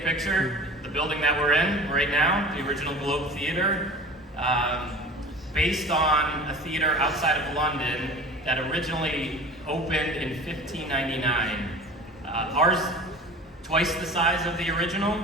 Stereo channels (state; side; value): normal; both; correlation 0.39